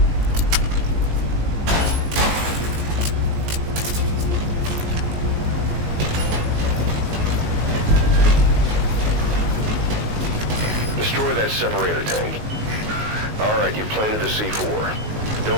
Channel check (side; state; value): left; late; 19 ms